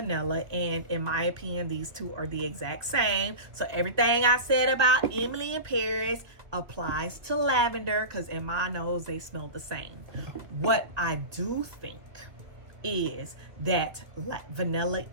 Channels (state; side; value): late; left; 2.1 ms